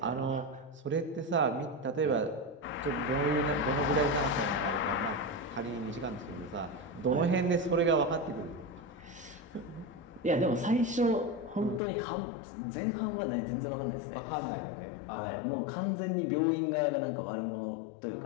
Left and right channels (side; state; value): right; drops out; at 11.8 s